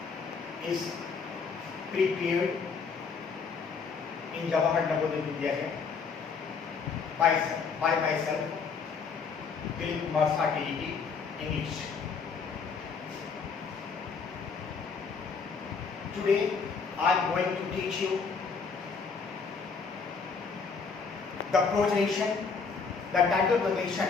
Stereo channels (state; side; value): quieter; right; 5.3 dB